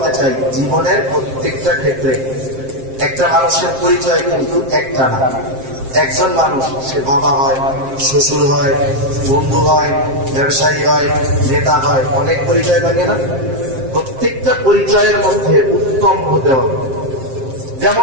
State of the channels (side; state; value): left; late; 7.6 ms